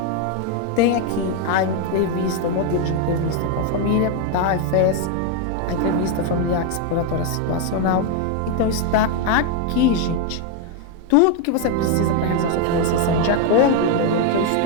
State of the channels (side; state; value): both; different; correlation 0.01